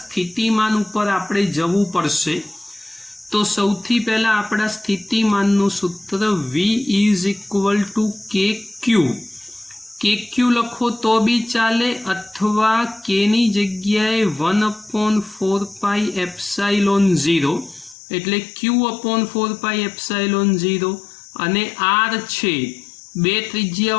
ઉપર આપણે જવું પડશે। તો સૌથી પહેલા આપણા સ્થિતિમાનનું સૂત્ર v ઇઝ ઇક્વલ ટુ કે ક્યુ। કે ક્યુ લખો તો બી ચાલે, અથવા કેની જગ્યાએ 1/4πε0 એટલે q/4πε0 અને r છે, બે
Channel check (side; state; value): right; drops out; at 17.9 s